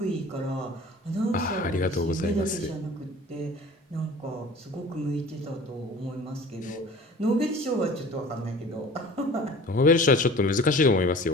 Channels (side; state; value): both; normal; correlation 0.43